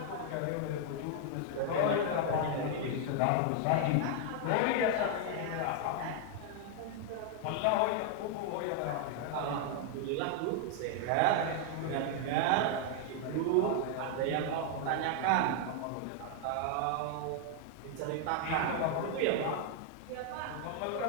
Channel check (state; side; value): different; both; correlation 0.00